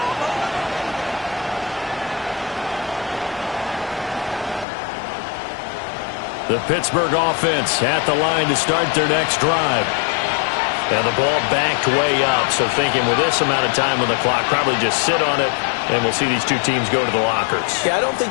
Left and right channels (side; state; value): right; drops out; at 4.7 s